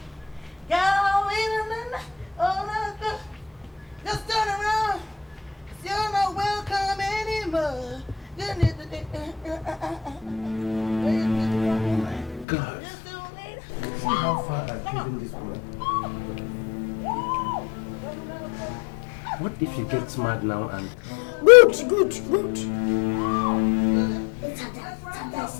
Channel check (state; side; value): drops out; right; at 12.5 s